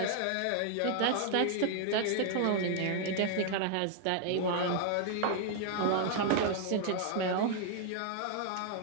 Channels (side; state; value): both; different; correlation 0.00